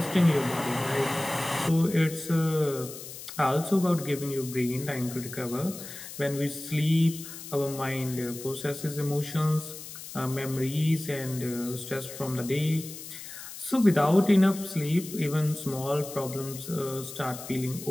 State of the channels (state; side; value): noise; left; hiss, 12 dB below the sound